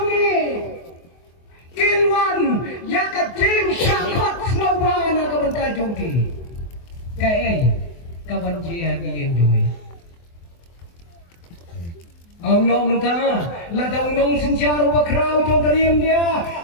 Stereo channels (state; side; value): late; right; 24 ms